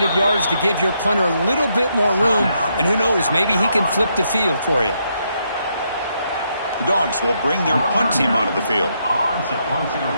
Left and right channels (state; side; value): inverted; both; correlation -0.77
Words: yards to give your punter a little bit more room. And who knows, maybe he can flip the field for you. The Dogs will bring their punt team onto the field.